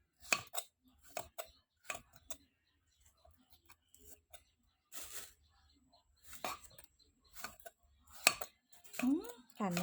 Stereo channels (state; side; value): identical; both; correlation 1.00